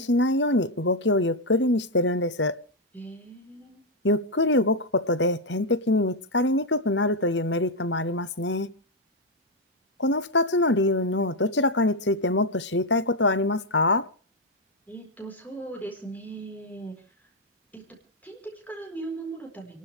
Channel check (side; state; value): both; normal; correlation 0.02